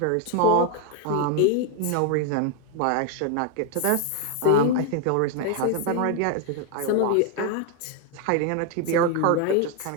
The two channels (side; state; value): both; different; correlation 0.01